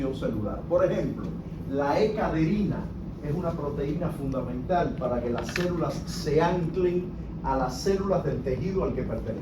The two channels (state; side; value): identical; both; correlation 1.00